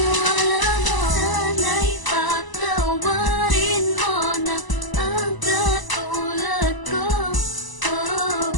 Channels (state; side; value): late; right; 1.0 ms